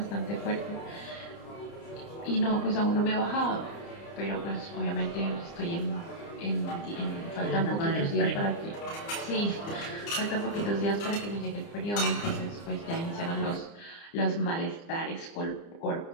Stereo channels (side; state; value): right; late; 30 ms